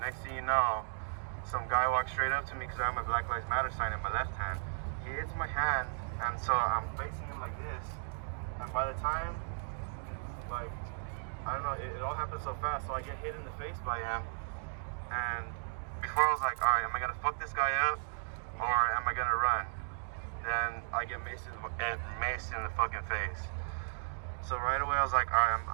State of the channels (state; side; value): silent; left; digital silence